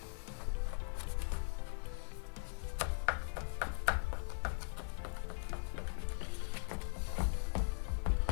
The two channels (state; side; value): silent; right; 51 dB below the other